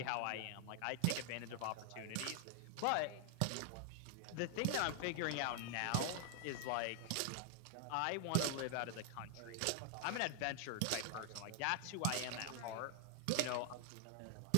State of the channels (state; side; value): different; both; correlation 0.00